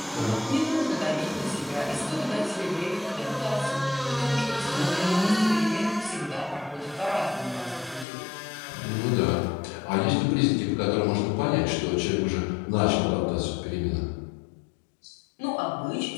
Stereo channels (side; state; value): right; drops out; at 8.1 s